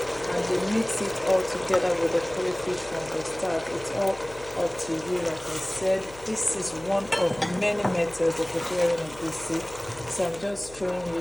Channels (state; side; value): noise; left; hum, 20 dB below the sound